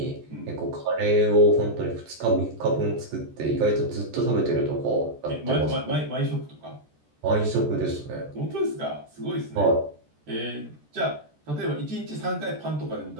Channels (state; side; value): late; left; 14 ms